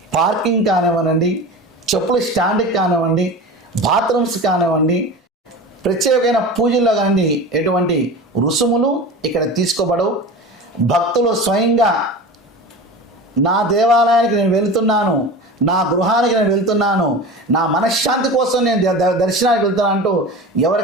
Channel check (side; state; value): both; normal; correlation 0.32